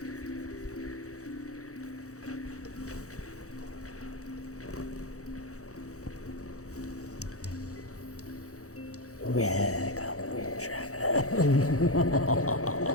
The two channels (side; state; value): right; late; 0.65 ms